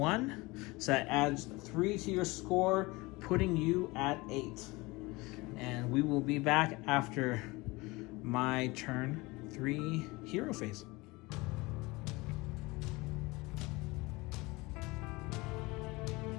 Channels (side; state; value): right; quieter; 23.1 dB